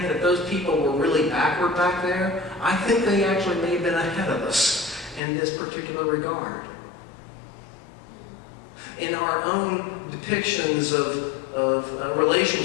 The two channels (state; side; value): drops out; right; at 5.2 s